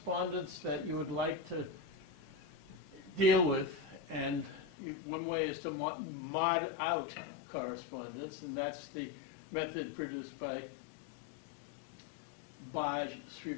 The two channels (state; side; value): drops out; right; at 4.7 s